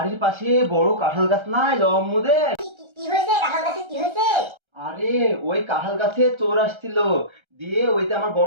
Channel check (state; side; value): late; left; 1.3 ms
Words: পাশে বড় কাঁঠাল গাছ নাই আম্মুদের? কি হয়েছে? কাঁঠাল গাছে কি হয়েছে? আরে ওই কাঁঠাল গাছে চোর আসছিল, দিয়ে ওই যে আমার